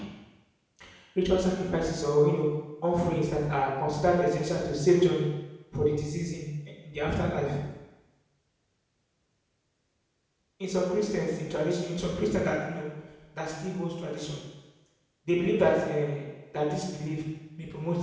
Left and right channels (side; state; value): both; identical; correlation 1.00